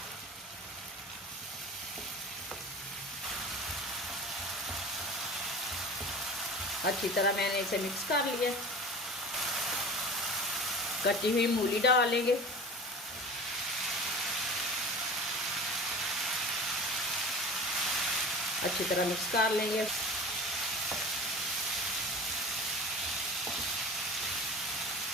अच्छी तरह मैंने इसे मिक्स कर लिया। कटी हुई मूली डाल लेंगे। अच्छी तरह मिक्स कर लेंगे।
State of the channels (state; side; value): normal; both; correlation 0.36